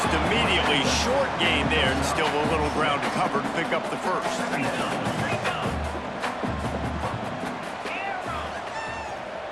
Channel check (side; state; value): both; identical; correlation 1.00